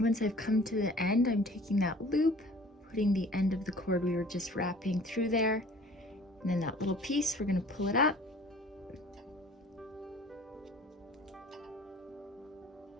I've come to the end, I'm taking that loop, putting the end of the cord we were just wrapping through there, and then that little piece, we're going to pull it up.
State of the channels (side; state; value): both; normal; correlation 0.48